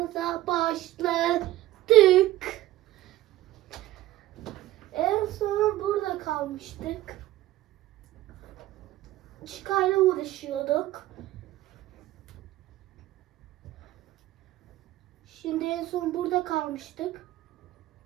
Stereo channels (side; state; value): left; quieter; 15.5 dB